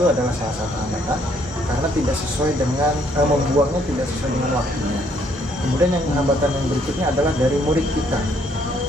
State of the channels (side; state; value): both; normal; correlation 0.67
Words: adalah salah satu hambatan karena tidak sesuai dengan membuangnya tidak sesuai dengan waktunya. Kemudian yang hambatan yang berikutnya adalah dari murid kita.